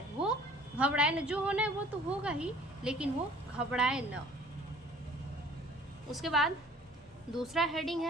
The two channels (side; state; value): both; normal; correlation 0.52